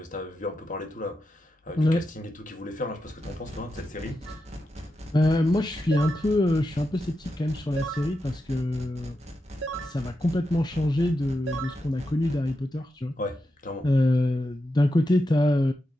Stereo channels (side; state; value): both; normal; correlation 0.88